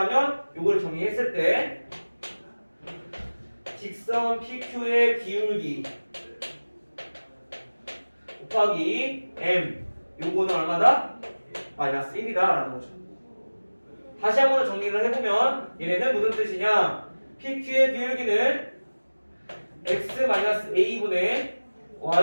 요걸 정리했을 때 직선 PQ의 기울기 곱하기 M 요거는 얼마다? 마이너스 1이다 라는 거죠. 다시 한 번 정리를 해보면 얘네는 무슨 뜻이냐? PQ의 기울기는 x-a분의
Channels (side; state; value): both; inverted; correlation -1.00